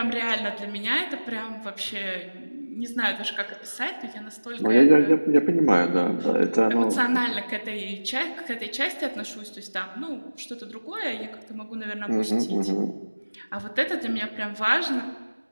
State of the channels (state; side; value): inverted; both; correlation -1.00